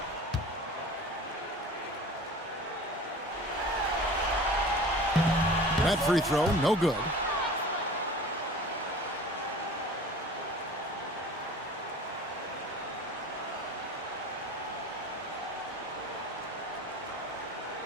That free throw, no good.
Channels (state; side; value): normal; both; correlation 0.41